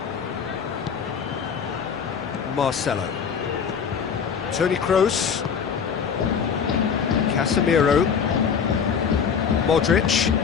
Marcelo. Toni Kroos. Casemiro. Modric.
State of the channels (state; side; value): quieter; right; 6.8 dB